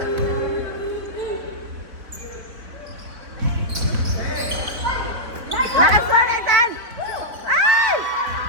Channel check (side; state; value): left; late; 3.9 ms